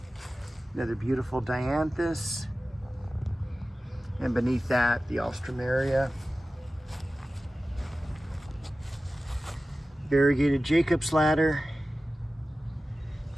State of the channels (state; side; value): normal; both; correlation 0.95